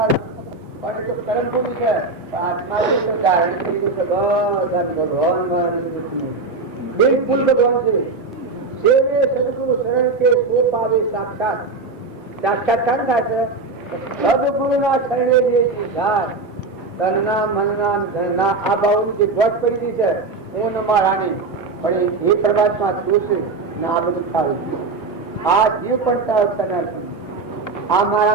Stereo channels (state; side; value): quieter; left; 3.9 dB